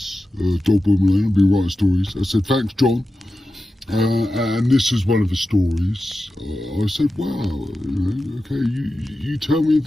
Dog Malone, I've been writing stories. I said, thanks, John. And this is one of the stories. I said, wow, okay, you tell me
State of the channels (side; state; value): both; normal; correlation 0.93